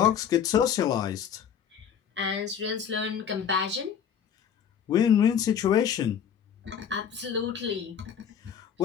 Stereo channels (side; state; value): right; quieter; 8.3 dB